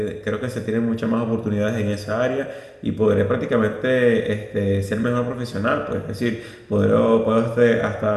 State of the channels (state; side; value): identical; both; correlation 1.00